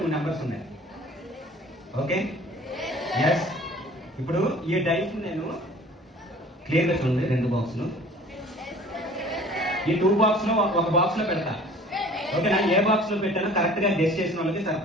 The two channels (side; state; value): both; normal; correlation 0.48